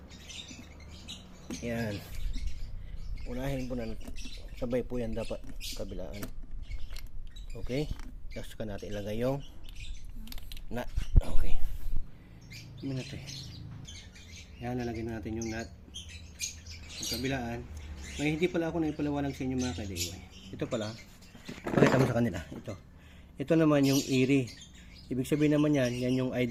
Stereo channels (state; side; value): identical; both; correlation 1.00